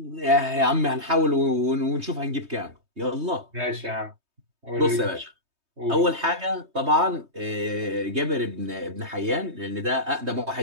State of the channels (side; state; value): left; late; 3.2 ms